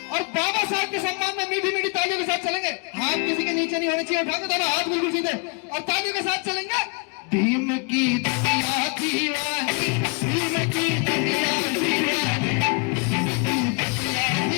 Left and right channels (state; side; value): quieter; right; 33.1 dB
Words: और बाबा साहब के सम्मान में मीठी मीठी तालियों के साथ चलेंगे। हाथ किसी के नीचे नहीं होने चाहिए। उठा के दोनों हाथ बिल्कुल सीधे और तालियों के साथ चलेंगे। भीम की दुनिया दीवानी, भीम की दुनिया दीवानी,